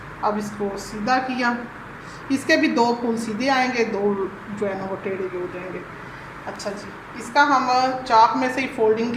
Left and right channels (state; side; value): identical; both; correlation 1.00